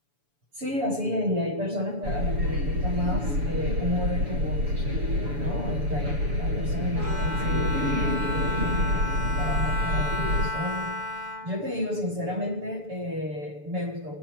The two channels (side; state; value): left; late; 7.0 ms